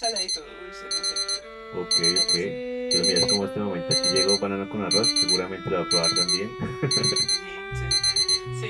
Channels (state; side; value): identical; both; correlation 1.00